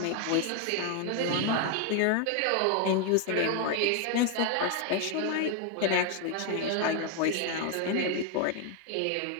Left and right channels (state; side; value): different; both; correlation 0.01